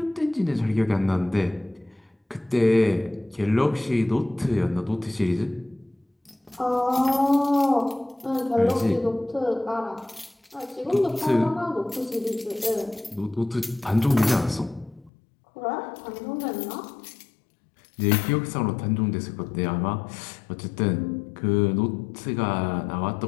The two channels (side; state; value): right; drops out; at 15.1 s